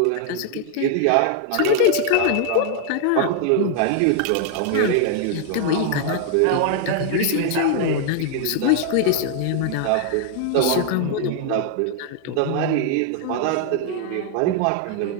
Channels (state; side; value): different; both; correlation 0.00